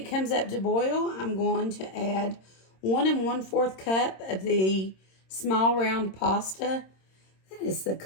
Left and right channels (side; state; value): right; late; 26 ms